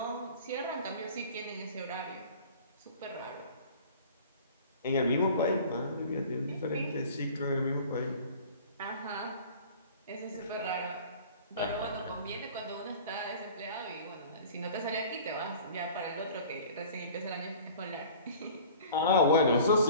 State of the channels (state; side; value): inverted; both; correlation -0.45